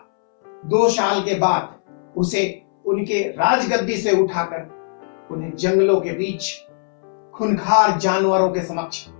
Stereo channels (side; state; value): right; silent; 66 dB below the other